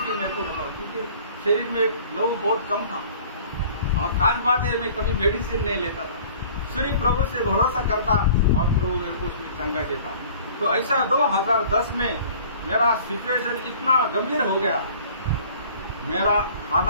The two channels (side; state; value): both; inverted; correlation -0.49